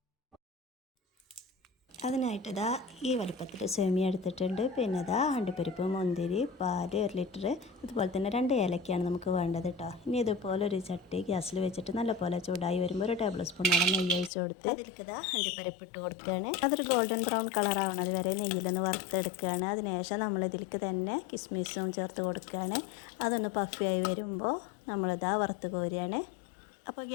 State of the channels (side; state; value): right; drops out; at 14.3 s